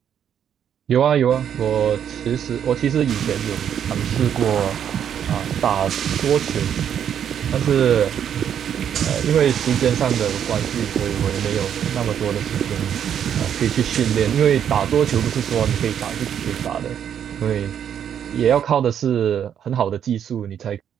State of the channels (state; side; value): quieter; left; 9.0 dB